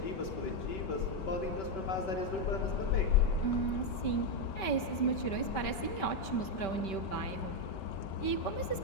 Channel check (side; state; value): right; late; 5.2 ms